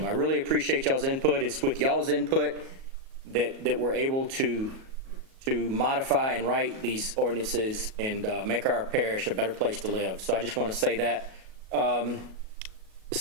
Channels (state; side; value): late; left; 37 ms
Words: I really appreciate y'all's input. It's with y'all's input that we're able to modify and write these ordinances and make our parish a better place to live. So I just want to say that. The